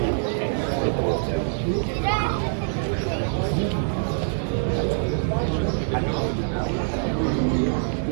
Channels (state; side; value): silent; left; 60 dB below the other